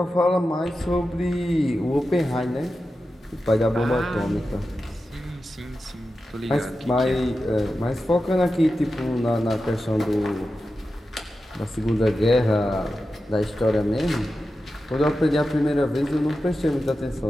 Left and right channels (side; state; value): both; normal; correlation 0.92